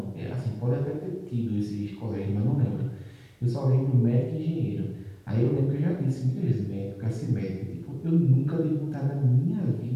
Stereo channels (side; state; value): both; identical; correlation 1.00